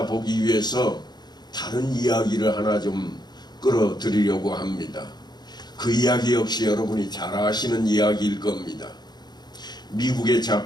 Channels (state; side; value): late; right; 0.20 ms